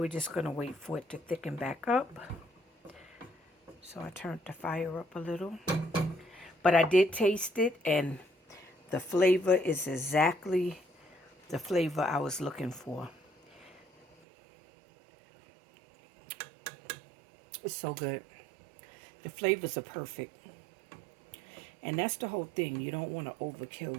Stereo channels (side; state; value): left; drops out; at 14.1 s